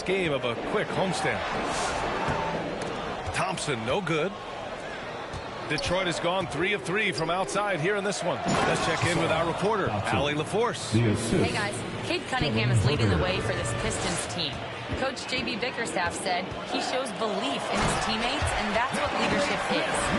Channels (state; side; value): identical; both; correlation 1.00